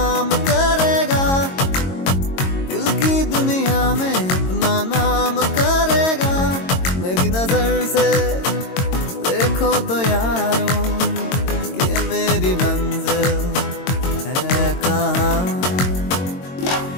करेगा दिल की दुनिया में अपना नाम करेगा मेरी नजर से देखो तो यारों कि मेरी मंजिल है कहाँ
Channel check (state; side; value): late; right; 22 ms